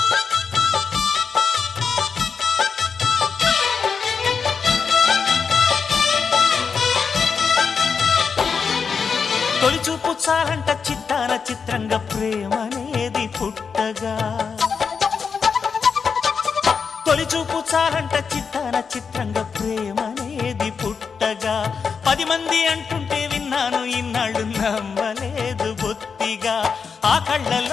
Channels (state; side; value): quieter; right; 5.8 dB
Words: చాలంట చిత్తాన చిత్రంగా ప్రేమనేది పుట్టగా తొలి చూపు చాలంట చిత్తాన చిత్రంగా ప్రేమనేది పుట్టగా 10 మంది అంటుంటే విన్నాను ఇన్నాళ్ళు నమ్మలేదు బొత్తిగా ఆ